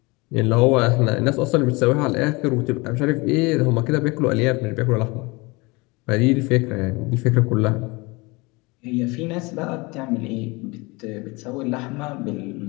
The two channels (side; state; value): right; quieter; 25.3 dB